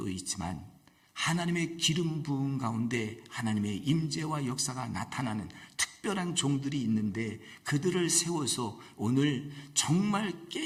있지만 하나님의 기름 부음 가운데 하나님의 임재와 역사가 나타나는 특별한 종들이 있는데 그들을 세워서 오늘 정말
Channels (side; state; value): both; identical; correlation 1.00